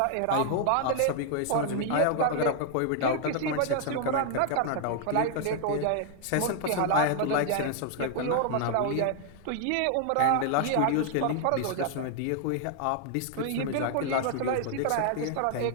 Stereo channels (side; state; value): both; different; correlation 0.00